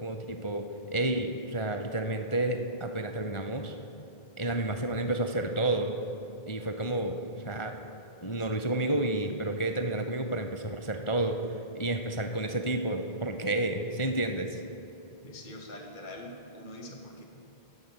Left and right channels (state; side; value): late; right; 1.4 ms